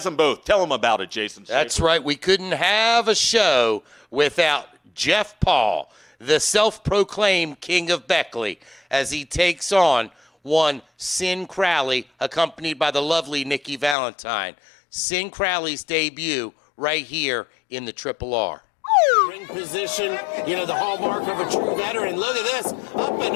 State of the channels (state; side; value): drops out; right; at 14.0 s